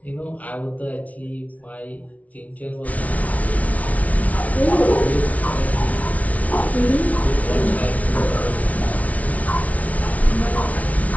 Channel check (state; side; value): late; right; 0.069 ms